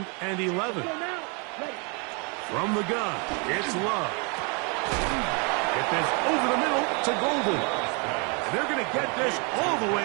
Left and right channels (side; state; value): left; quieter; 33.9 dB